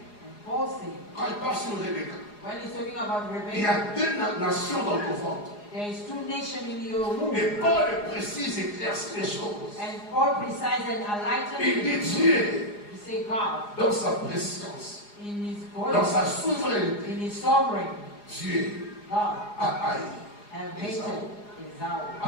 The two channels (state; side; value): late; right; 4.8 ms